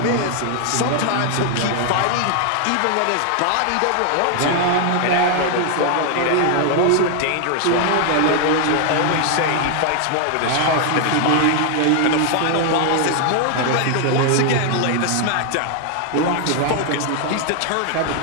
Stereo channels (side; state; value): both; different; correlation 0.00